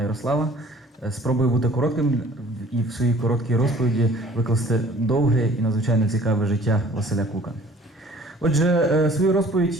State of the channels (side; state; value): both; normal; correlation 0.52